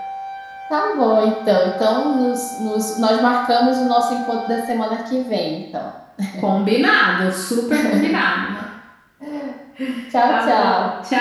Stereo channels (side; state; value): both; identical; correlation 1.00